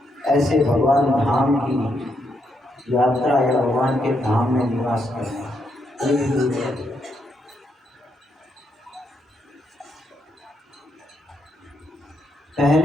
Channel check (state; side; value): normal; both; correlation 0.78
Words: ऐसे भगवान धाम की यात्रा या भगवान के धाम में निवास करना, ये भी दुर्लभ है।